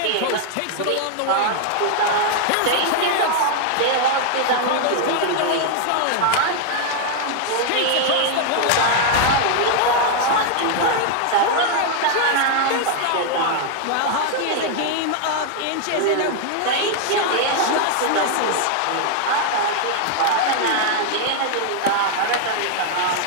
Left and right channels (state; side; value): different; both; correlation 0.00